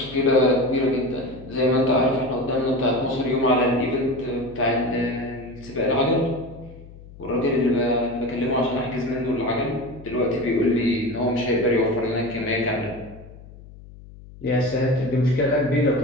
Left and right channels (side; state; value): left; noise; hum, 19 dB below the sound